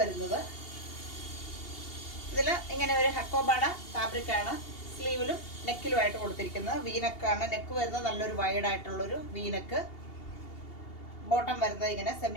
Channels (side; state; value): right; late; 2.8 ms